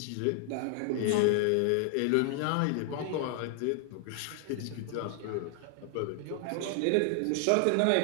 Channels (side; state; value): both; different; correlation 0.00